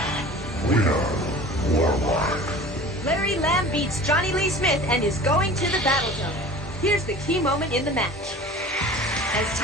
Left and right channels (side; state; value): both; normal; correlation 0.40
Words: Winner, Warlock. Larry Lamb beats Johnny Lee Smith and is going to the battle zone. Here's the key moment in the match. As